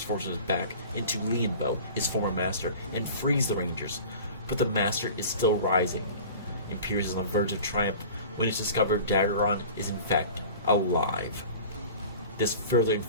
back into Lianbo, his former master, and frees the Rangers, but the Master is still rising. Imperious is on the verge of triumph when it's discovered Dagron is in fact alive. This further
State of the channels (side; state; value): both; inverted; correlation -0.40